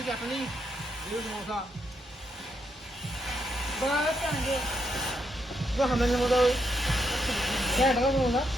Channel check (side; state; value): both; normal; correlation 0.78